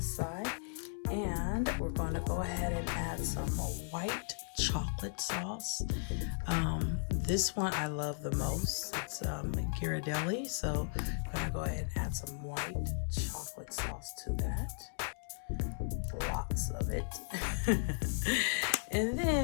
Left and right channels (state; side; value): silent; right; digital silence